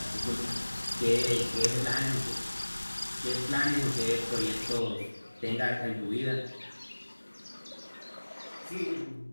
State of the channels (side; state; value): both; inverted; correlation -1.00